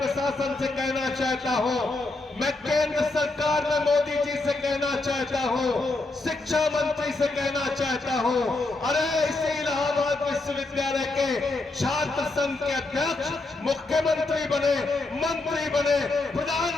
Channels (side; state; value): right; quieter; 3.2 dB